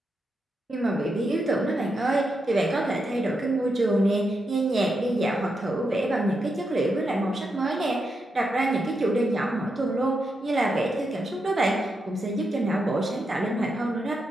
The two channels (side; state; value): both; normal; correlation 0.84